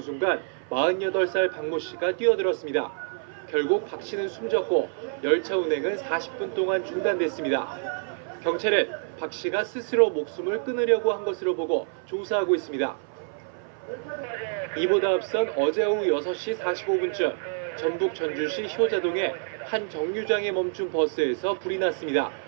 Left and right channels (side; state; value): left; silent; 56 dB below the other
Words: 순간 48살 박모 씨가 뛰어들었습니다. 결국 박 씨는 숨졌고 열차 운행은 40분 동안 중단됐습니다. 경찰은 박 씨가 스스로 목숨을 끊으려고 한 것으로 보고 조사하고 있습니다. 이보다 앞선 어제 오후 6시 45분쯤 전북 전주시 효자동의 한 정류장에 멈춘 버스에서 불이 났습니다.